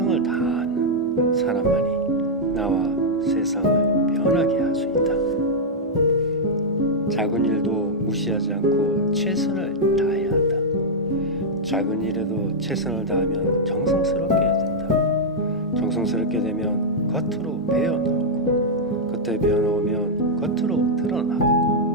다하는 사람만이 나와 세상을 변하게 할 수 있다. 작은 일도 무시하지 않고 최선을 다해야 한다. 작은 일에도 최선을 다하면 정성스럽게 된다. 정성스럽게 되면 겉으로 배어나오고, 겉에 배어나오면 겉으로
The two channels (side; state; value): both; normal; correlation -0.05